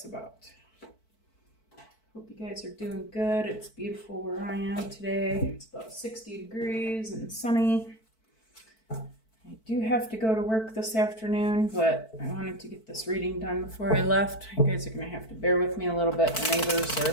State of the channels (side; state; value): right; late; 4.5 ms